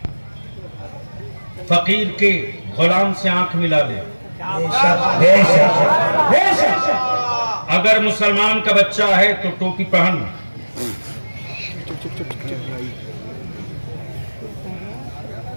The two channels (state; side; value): inverted; both; correlation -1.00